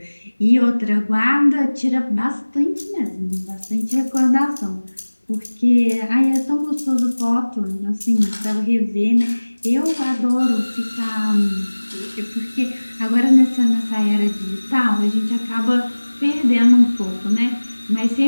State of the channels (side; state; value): both; inverted; correlation -1.00